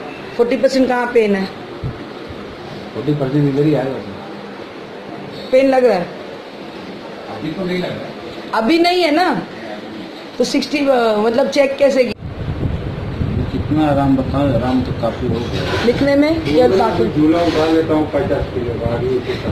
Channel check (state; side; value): identical; both; correlation 1.00